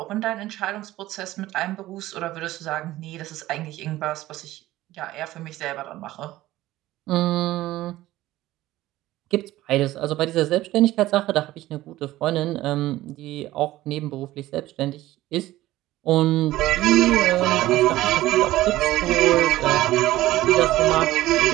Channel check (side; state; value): left; quieter; 16.1 dB